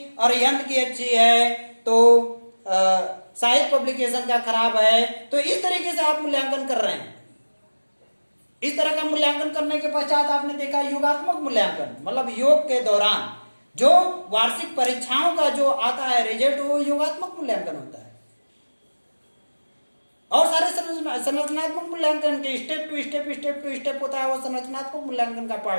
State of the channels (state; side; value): inverted; both; correlation -1.00